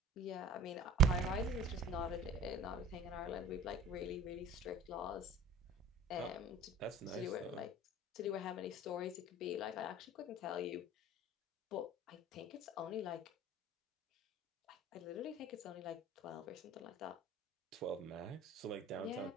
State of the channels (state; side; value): normal; both; correlation 0.43